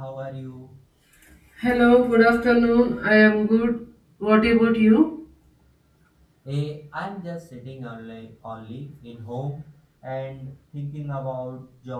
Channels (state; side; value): identical; both; correlation 1.00